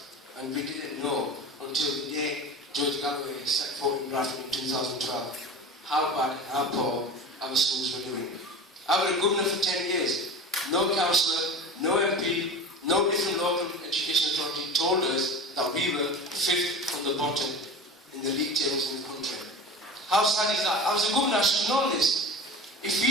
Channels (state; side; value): normal; both; correlation 0.33